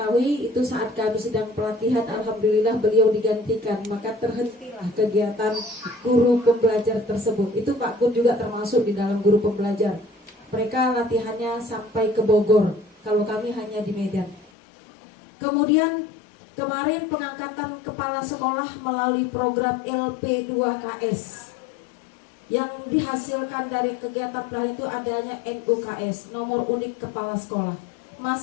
itu saat kami sedang pelatihan, alhamdulillah beliau digantikan, maka terhentilah kegiatan guru pembelajar tersebut. Itu Pak Kun juga termasuk di dalam guru pembelajar. Mereka latihannya sampai ke Bogor, kalau kami hanya di Medan. Kemudian kemarin pengangkatan kepala sekolah melalui program LP2KS. Yang dihasilkan dari kegiatan pelatihan itu adanya NUKS, nomor unik kepala sekolah.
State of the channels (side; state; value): right; drops out; at 14.5 s